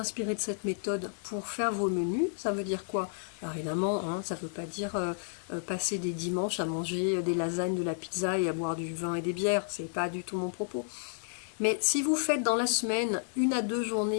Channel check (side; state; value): right; silent; digital silence